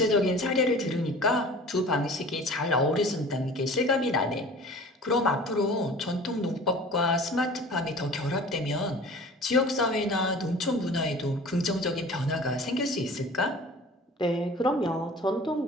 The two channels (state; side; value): normal; both; correlation 0.42